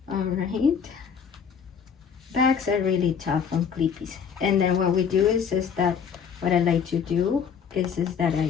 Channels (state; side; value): quieter; right; 6.9 dB